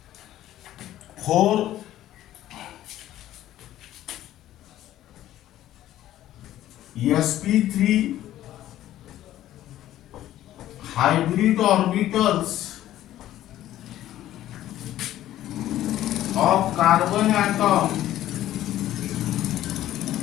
four sp3 hybrid orbitals of carbon atom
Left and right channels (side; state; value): right; quieter; 13.3 dB